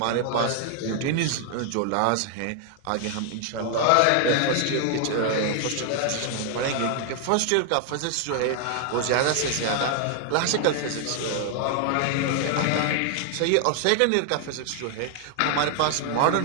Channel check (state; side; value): different; both; correlation 0.00